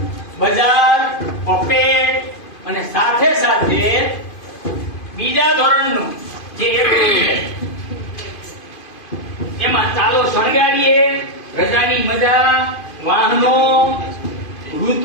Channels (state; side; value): late; right; 2.5 ms